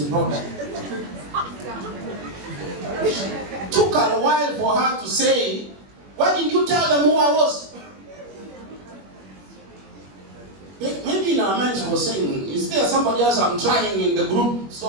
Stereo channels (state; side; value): late; left; 21 ms